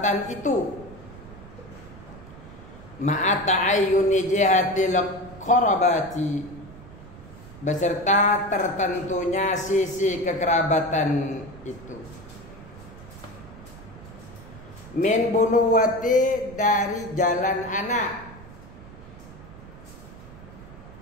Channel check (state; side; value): noise; right; rumble, 17 dB below the sound